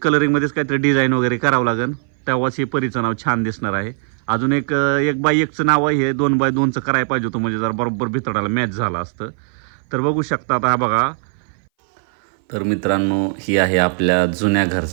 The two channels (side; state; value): left; silent; 61 dB below the other